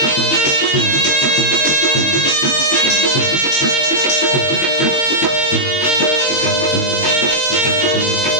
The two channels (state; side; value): late; right; 22 ms